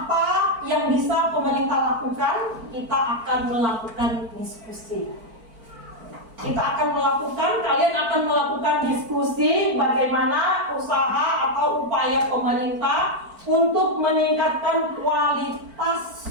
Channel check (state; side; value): late; left; 4.5 ms